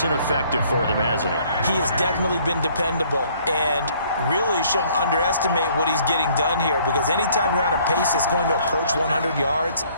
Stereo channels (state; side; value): inverted; both; correlation -0.60